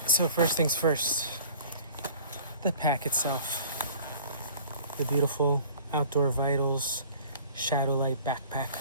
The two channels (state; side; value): inverted; both; correlation -0.48